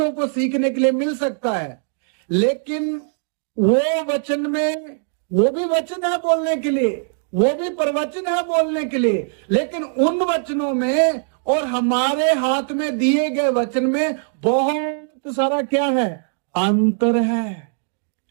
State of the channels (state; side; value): silent; left; digital silence